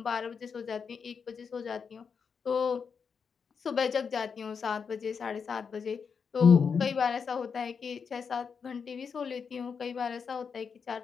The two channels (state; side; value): quieter; right; 6.1 dB